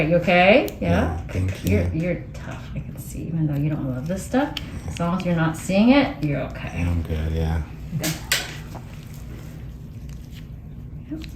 You okay? Yeah? Thank you. You're tough. I can see, even though you don't love this stuff. As long as you're not seeing it, you're okay. Yeah, I'm good, yeah. Good. Yep,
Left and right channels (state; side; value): identical; both; correlation 1.00